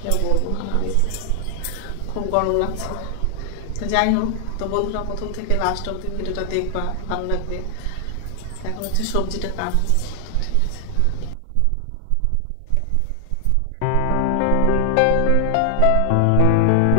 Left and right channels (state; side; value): different; both; correlation 0.00